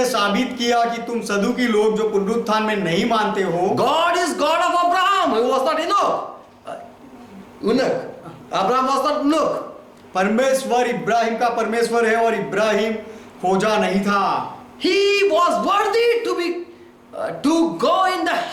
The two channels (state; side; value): identical; both; correlation 1.00